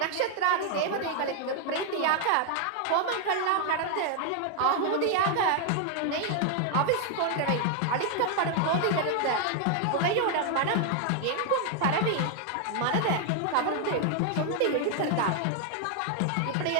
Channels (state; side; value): different; both; correlation 0.00